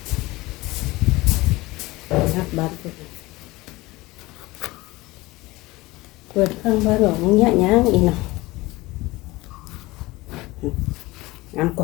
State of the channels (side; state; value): right; quieter; 20.7 dB